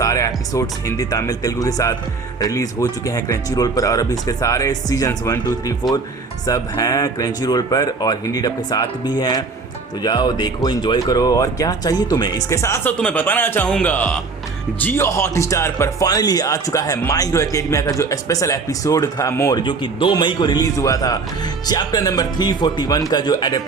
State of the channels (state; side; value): quieter; left; 4.3 dB